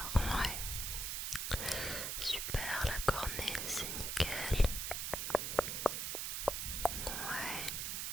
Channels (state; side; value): noise; right; hiss, 2 dB below the sound